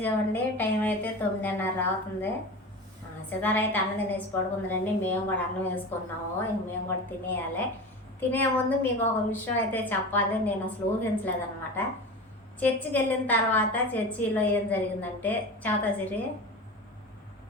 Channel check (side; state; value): both; normal; correlation 0.30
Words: టైం అయితే 9:30 అవుతుంది. సితార అయితే అన్నం తినేసి పడుకుందండి. మేము కూడా అన్నం వేసుకున్నాము. ఇంక మేము కూడా తినేయాలి. తినే ముందు మీకు ఒక విషయం అయితే చెప్పాలి. నేను అసలు ఊహించలేదన్నమాట. చర్చికి వెళ్ళిన తర్వాత చర్చిలో ఏం జరిగిందంటే, చౌతసిరి